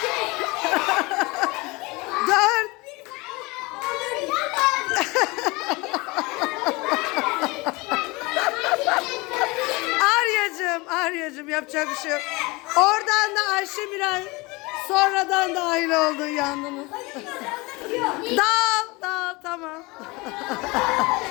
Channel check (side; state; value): right; quieter; 24.6 dB